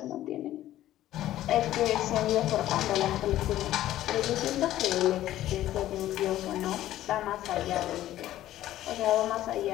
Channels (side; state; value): right; quieter; 13.7 dB